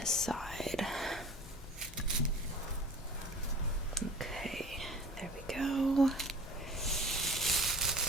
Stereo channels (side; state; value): both; normal; correlation 0.42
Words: side. Okay, there we go.